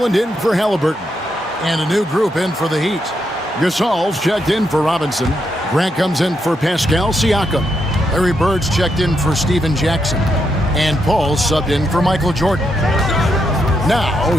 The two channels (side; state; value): both; normal; correlation 0.80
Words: in for Halliburton. And a new group in for the Heat. Gasol's checked in for Robinson. Grant comes in for Pascal Siakam. Larry Bird's checked in for Steven Jackson. And Paul subbed in for Michael Jordan. Now,